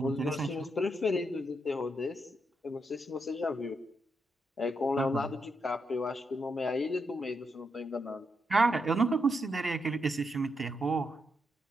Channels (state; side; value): normal; both; correlation 0.81